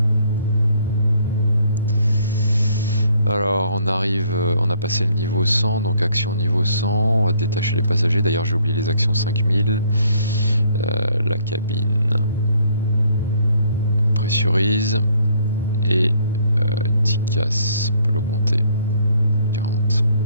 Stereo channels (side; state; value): both; inverted; correlation -0.64